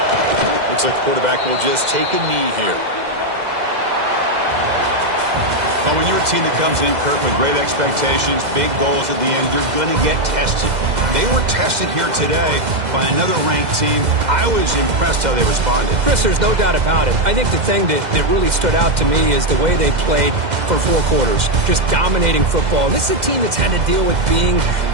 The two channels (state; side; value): late; left; 2.0 ms